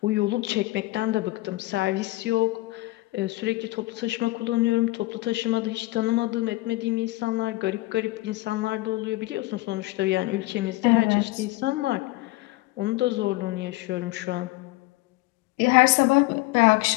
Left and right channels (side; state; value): right; quieter; 20.0 dB